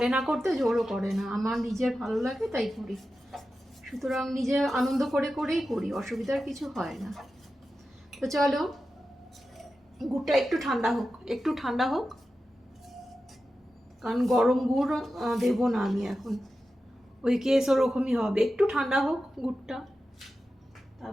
না করতে, জোরও করে না, আমার নিজের ভালো লাগে তাই করি, সুতরাং নিজে আনন্দ করে করেই করি, অসুবিধার কিছু হয় না। তো চলো, গুড়টা একটু ঠান্ডা হোক, একটু ঠান্ডা হোক, কারণ গরম গুড় দেবো না আমি এখন, ওই কেস ওরকমই হবে, একটু ঠান্ডা হোক গুড়টা,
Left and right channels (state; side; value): normal; both; correlation 0.92